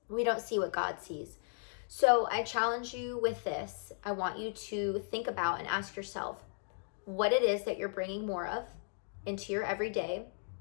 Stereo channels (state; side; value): silent; right; 54 dB below the other